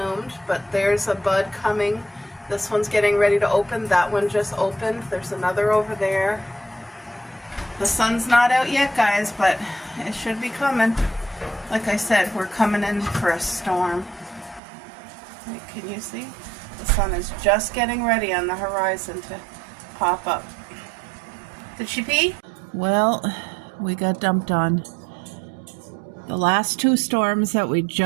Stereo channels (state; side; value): drops out; left; at 14.6 s